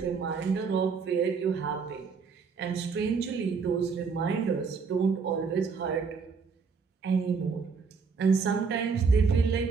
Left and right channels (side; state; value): left; quieter; 5.3 dB